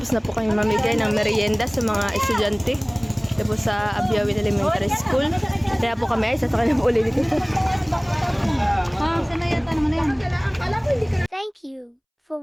na po kami mamigay ng merienda sa mga estudyante. Ito po sa Abiawin Elementary School. Kaya po kami ay sasakay na po ulit dito. Sanayata naman na yan. Thank you for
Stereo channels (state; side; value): identical; both; correlation 1.00